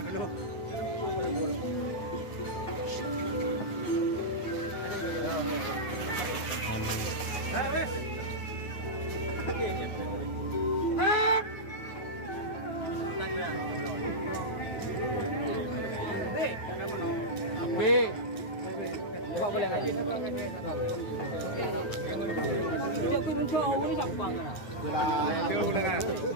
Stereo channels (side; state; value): right; late; 9.5 ms